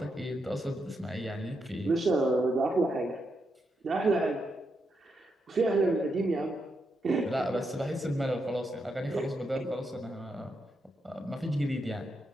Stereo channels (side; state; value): both; normal; correlation 0.83